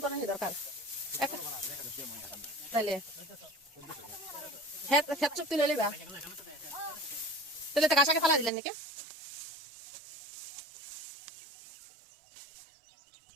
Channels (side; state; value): left; drops out; at 8.5 s